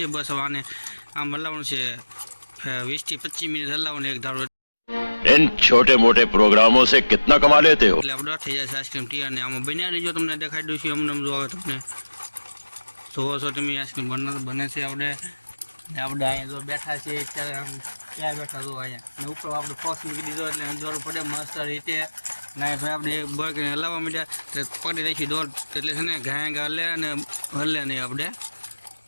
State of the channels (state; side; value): inverted; both; correlation -1.00